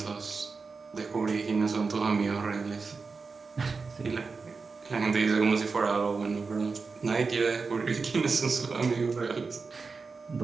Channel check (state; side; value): quieter; left; 4.6 dB